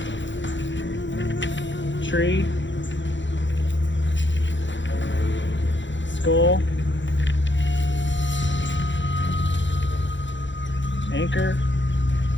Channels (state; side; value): late; right; 0.54 ms